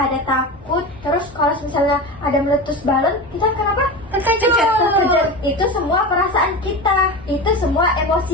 takut. Terus kalau misalnya ada meletus balon, kita kenapa? Terkejut. Itu semua perasaan kita. Itu semua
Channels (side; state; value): both; normal; correlation 0.26